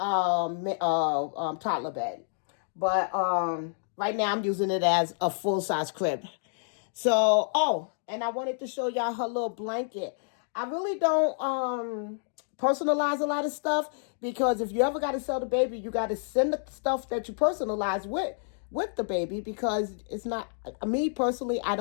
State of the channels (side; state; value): right; silent; digital silence